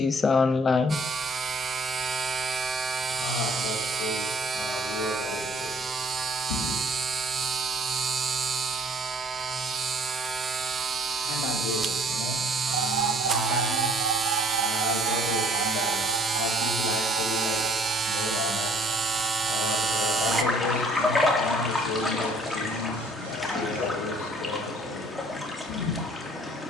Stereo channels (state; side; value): normal; both; correlation 0.58